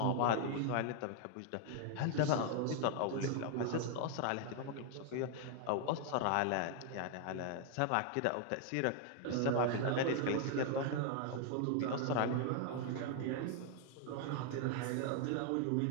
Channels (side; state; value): both; different; correlation 0.00